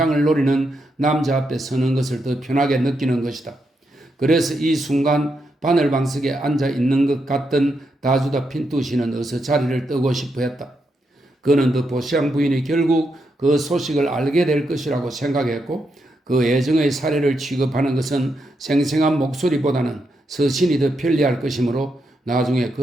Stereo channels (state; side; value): normal; both; correlation 0.82